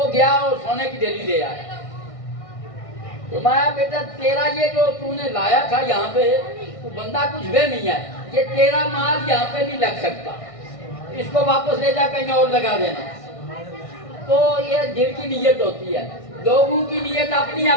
گیا اور سونے کی ڈلی لے آیا. تو میں بیٹا تیرا یہ جو تو نے لایا تھا یہاں پہ, تو بندہ کچھ وہ نہیں ہے, یہ تیرا مال یہاں پہ نہیں لگ سکتا, اس کو واپس لے جا کہیں اور لگا دینا. تو یہ دل کی نیت ہوتی ہے, لوگوں کی نیت اپنی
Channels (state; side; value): late; right; 1.6 ms